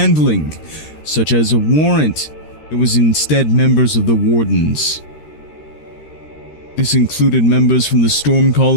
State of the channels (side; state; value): right; late; 13 ms